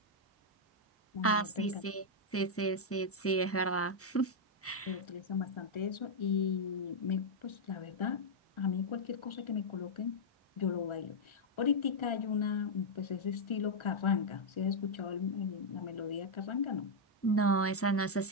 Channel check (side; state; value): both; normal; correlation -0.04